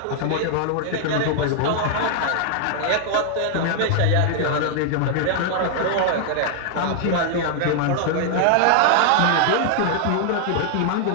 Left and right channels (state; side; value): different; both; correlation 0.00